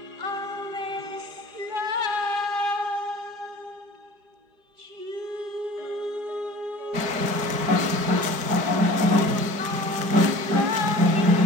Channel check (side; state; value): left; late; 5.2 ms